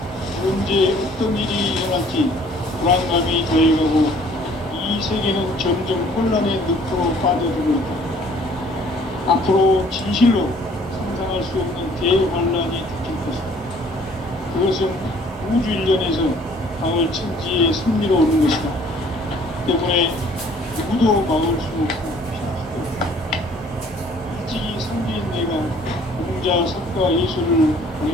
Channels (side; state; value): both; normal; correlation 0.56